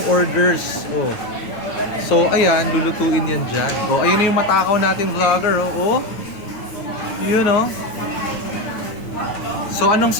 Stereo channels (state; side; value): late; right; 9.4 ms